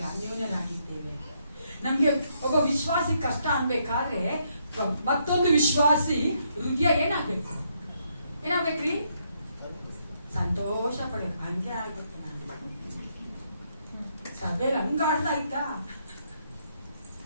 ಅನ್ಯೋನ್ಯರಾಗಿದ್ದೇವೆ. ನಮ್ಗೆ ಒಬ್ಬ ವಿಶ್ವಾಸಿ ಕಷ್ಟ ಅನ್ಬೇಕಾದ್ರೆ ಮತ್ತೊಂದು ವಿಶ್ವಾಸಿ ಹೃದಯ ಏನಾಗ್ಬೇಕು? ಏನಾಗ್ಬೇಕ್ರಿ? ಸಂತೋಷ ಪಡಬೇಕು. ಹಂಗೆ ಆಗ್ಬೇಕು. ನಾನು ಸಭೆಯಲ್ಲಿ ಹಂಗ ಆಡ್ತಾ ಇದ್ದ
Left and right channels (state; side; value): inverted; both; correlation -0.75